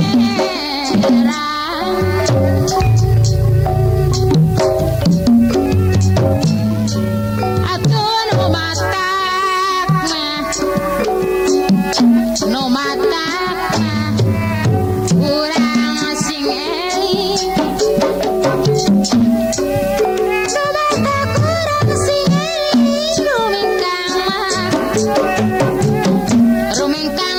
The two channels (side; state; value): both; identical; correlation 1.00